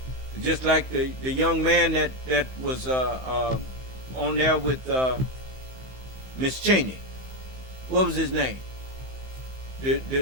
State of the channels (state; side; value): late; left; 15 ms